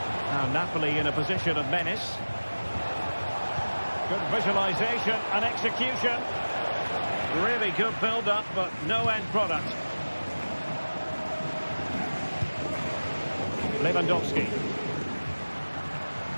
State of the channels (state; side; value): inverted; both; correlation -1.00